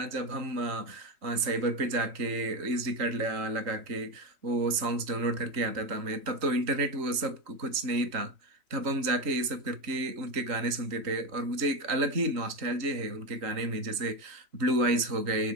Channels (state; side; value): late; left; 3.1 ms